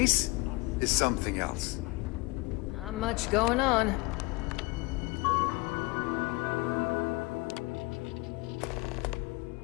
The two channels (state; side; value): quieter; right; 24.3 dB